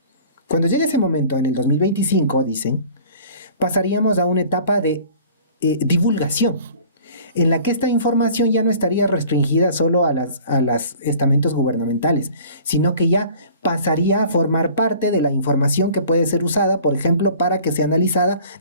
Cuando llegue ese momento, en el 2025, dicen, pasaríamos a una etapa de divulgación, en la que esta información ya no estaría restringida solo a los estamentos gubernamentales, sino que ya pasaría a formar parte de la información que puede ser usada, por ejemplo, para que sea analizada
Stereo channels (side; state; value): both; inverted; correlation -0.48